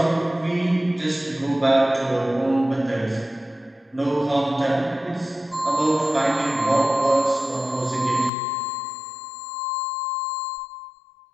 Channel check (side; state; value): right; drops out; at 8.3 s